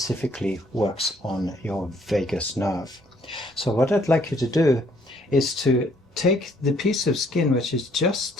works on your vagus nerve. So what I'd like you to do is to take the piece of skin which is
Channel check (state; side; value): normal; both; correlation 0.65